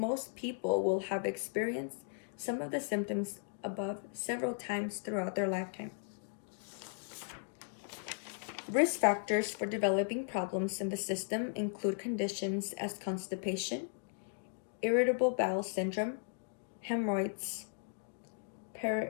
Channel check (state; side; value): silent; right; digital silence